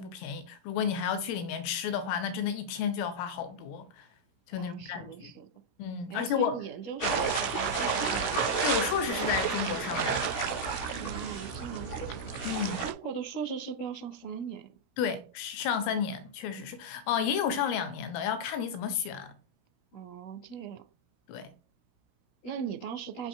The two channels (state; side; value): late; right; 16 ms